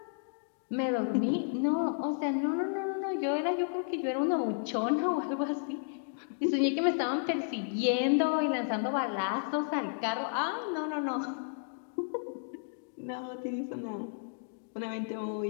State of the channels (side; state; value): right; silent; digital silence